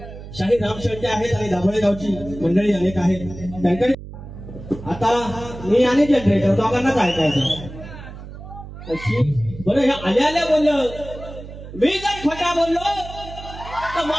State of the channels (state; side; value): noise; right; hum, 13 dB below the sound